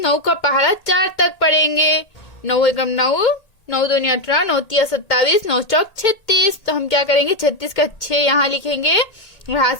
9 का पहाड़ा 4 तक पढ़ेंगे। 9 एकम 9, 9 दूनी 18, 9 तिया 27, 9 चौक 36। तो हम क्या करेंगे? 36 का 6 यहाँ लिखेंगे और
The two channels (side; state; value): right; late; 1.8 ms